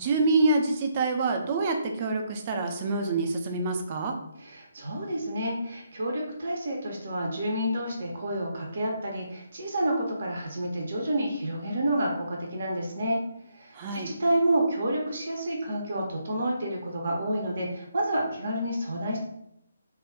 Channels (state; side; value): inverted; both; correlation -0.75